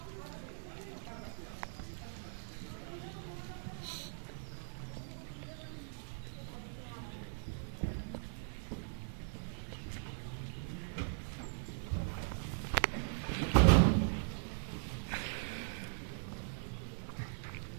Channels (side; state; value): left; silent; 51 dB below the other